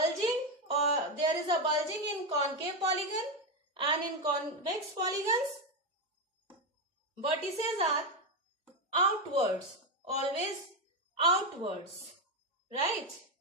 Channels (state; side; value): normal; both; correlation 0.09